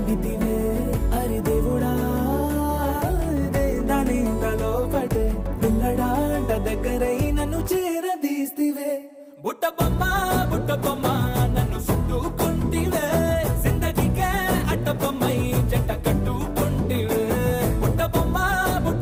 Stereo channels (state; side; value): identical; both; correlation 1.00